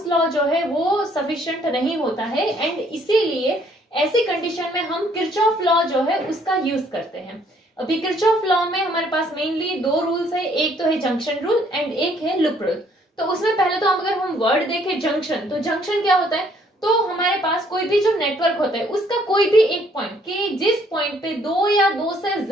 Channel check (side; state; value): both; normal; correlation 0.64